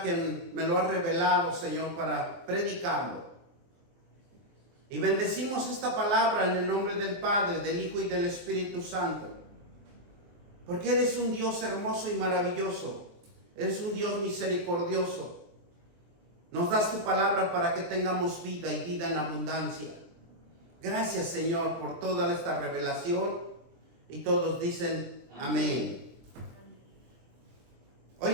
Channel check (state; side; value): late; left; 23 ms